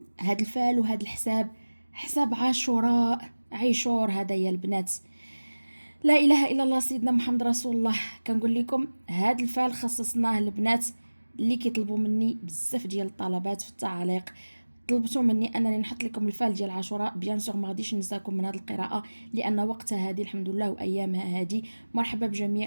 هاد الفال وهاد الحساب حساب عاشوراء عيشور هذا يا البنات. لا اله الا الله سيدنا محمد رسول الله. كنقول لكم هاد الفال خصصناه البنات اللي كيطلبوا مني بزاف ديال الطلبات في التعاليق. طلبتوا مني انني نحط لكم الفال ديال عاشوراء. بيان سور ما غاديش ننساكم من هذه القراءه لان وقتها هذه الحمد لله وايامها هذه. مرحبا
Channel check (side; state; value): both; inverted; correlation -1.00